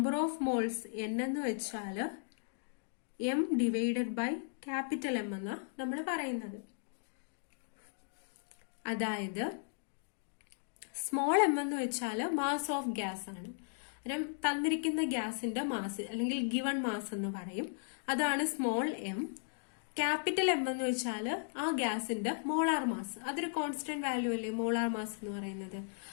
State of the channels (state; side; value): silent; right; digital silence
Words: ഓഫ് മോൾസ് N എന്ന് വെച്ചാൽ M divided by capital M എന്നാ നമ്മൾ പറയുന്നത്. അതായത് സ്മോൾ m എന്ന് വെച്ചാൽ മാസ് ഓഫ് ഗ്യാസ് ആണ്. തന്നിരിക്കുന്ന ഗ്യാസിന്റെ മാസ് അല്ലെങ്കിൽ ഗിവൺ മാസ് എന്ന് പറയും. അതാണ് സ്മോൾ m. ക്യാപിറ്റൽ M എന്ന് വെച്ചാൽ ആ ഗ്യാസിന്റെ മോളാർ മാസ്. അതൊരു കോൺസ്റ്റന്റ് വാല്യൂ അല്ലേ മോളാർ മാസ് എന്ന് പറയുന്നത്.